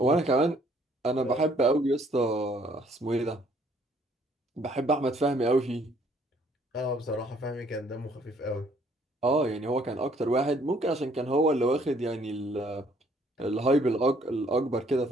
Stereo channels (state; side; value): normal; both; correlation 0.63